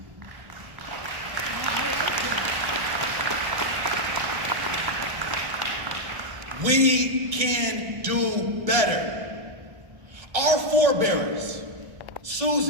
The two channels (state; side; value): late; left; 1.7 ms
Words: We can do better. Our forebears,